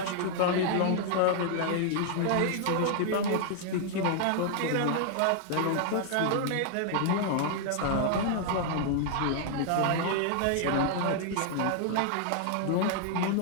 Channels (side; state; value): both; different; correlation 0.00